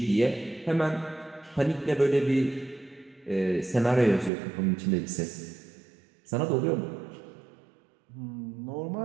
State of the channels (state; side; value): drops out; left; at 4.3 s